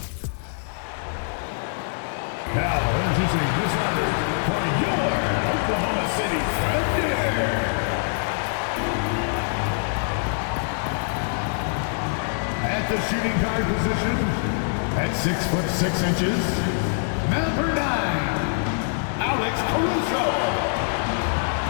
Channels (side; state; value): right; silent; digital silence